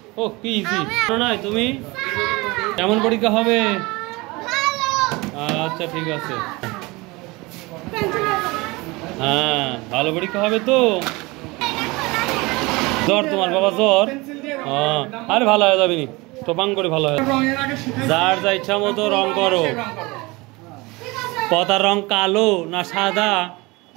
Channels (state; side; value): quieter; left; 23.7 dB